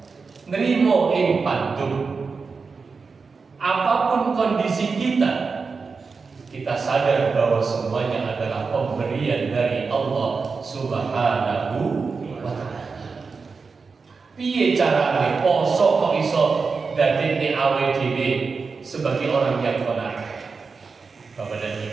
nrimo ing pandum. Apapun kondisi kita sadar bahwa semuanya adalah pemberian dari Allah Subhanahu wa ta'ala. Piye carane poso kok iso dadekne awake dhewe sebagai orang yang qanaah? Bapak dan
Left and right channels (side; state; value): left; quieter; 4.8 dB